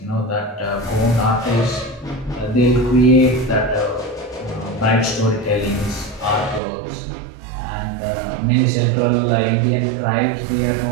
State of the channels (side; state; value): left; drops out; at 6.6 s